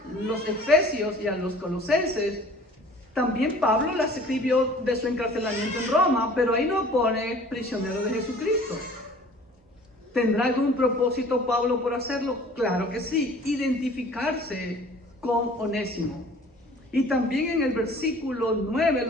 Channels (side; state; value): both; normal; correlation 0.49